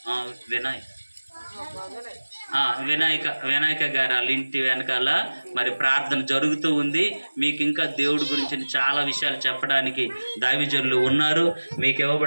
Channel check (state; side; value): inverted; both; correlation -1.00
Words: వినాయక గారు వాళ్ళ ఇంటి వెనకాల మరి ప్రార్థన జరుగుతూ ఉంది. మీకు ఇంకా దేవుడి గురించి చాలా విషయాలు చెప్పడానికి దైవజనులు ఉన్నారు. మీకు